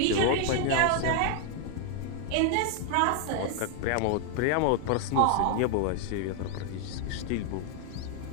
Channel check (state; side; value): different; both; correlation 0.00